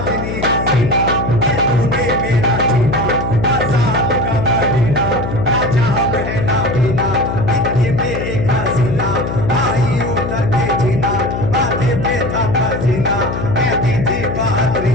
हसीना, ये तूने मेरा जीना आजाद का महीना, ना जाम है ना पीना, इतनी बेहसीना आई उतर के जीना, माथे पे था पसीना, कहती थी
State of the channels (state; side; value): noise; left; hum, 4 dB below the sound